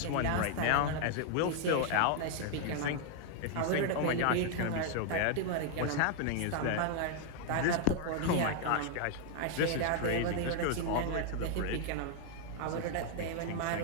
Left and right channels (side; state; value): both; different; correlation 0.00